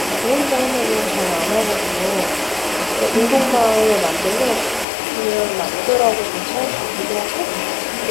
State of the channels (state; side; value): drops out; right; at 4.9 s